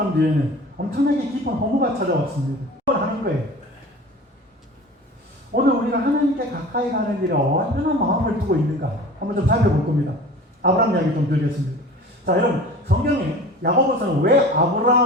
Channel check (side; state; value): both; normal; correlation 0.40